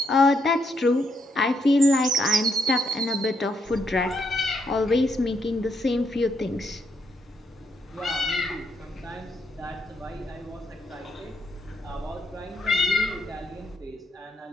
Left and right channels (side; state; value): both; normal; correlation 0.76